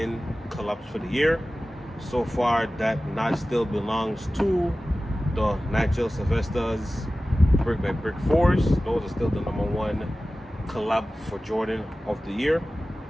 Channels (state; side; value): normal; both; correlation 0.96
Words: collabs for the year. So far, that notch still belongs to the Nigel Sylvester's Brick by Brick 4s. Those are still the number 1 collab for Jordan of the year.